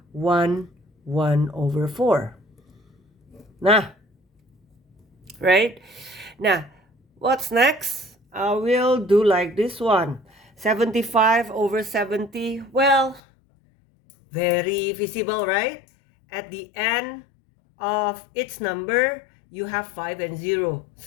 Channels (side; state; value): right; drops out; at 13.2 s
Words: 1 over 4. Nah, right? Now, what's next? I will do like this one. 75 over 70. Well, very visible, right? At the end of each number, you have 5 and 0.